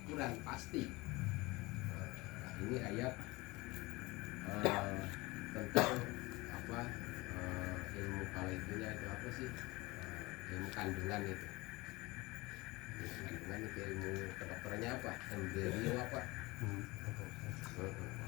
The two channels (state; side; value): quieter; right; 22.5 dB